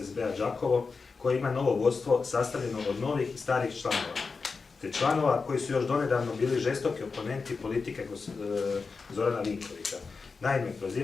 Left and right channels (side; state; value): right; quieter; 4.6 dB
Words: Đakovo, koji ima novo vodstvo sastavljeno od novih i starih članova, te članova koji su još donedavno bili žestoki oponenti politike Zorana Vinkovića. Naime,